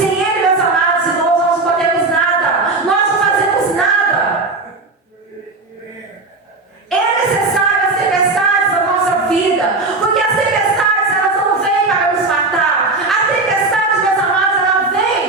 Ele, meus amados irmãos, nós não podemos nada. Nós não fazemos nada. É necessário as tempestades na nossa vida, porque as tempestades, elas não vêm para nos matar. A tempestade, meus amados, ela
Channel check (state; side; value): quieter; left; 3.5 dB